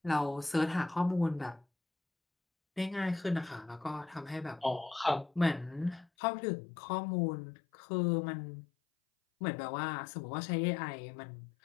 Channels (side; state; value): right; drops out; at 6.1 s